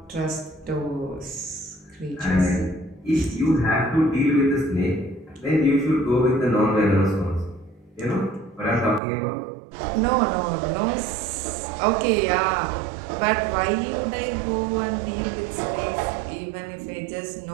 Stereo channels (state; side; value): drops out; left; at 9.0 s